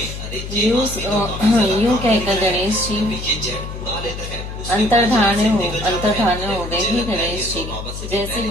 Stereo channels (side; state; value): left; noise; hum, 8 dB below the sound